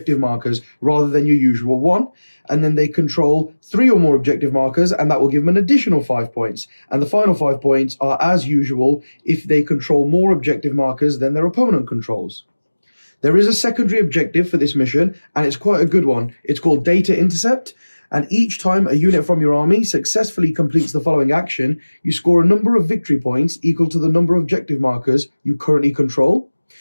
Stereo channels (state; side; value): inverted; both; correlation -1.00